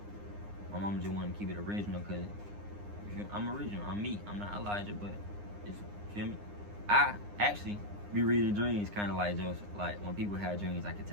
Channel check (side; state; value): left; late; 9.8 ms